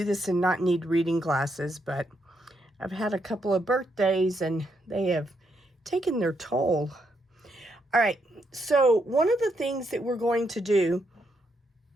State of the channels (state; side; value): normal; both; correlation 0.78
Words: this and not need reading glasses, but I've had a couple of birthdays and they have taken their toll. All right. So one of the things that we're going to do,